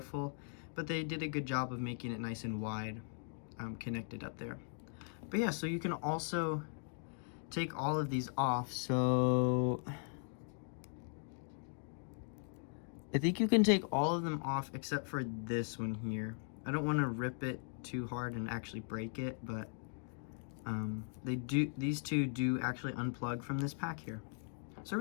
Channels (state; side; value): silent; right; 52 dB below the other